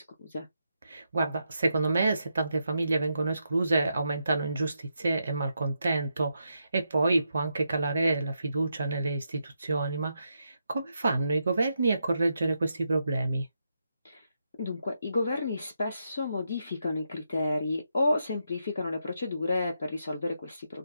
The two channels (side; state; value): both; inverted; correlation -0.83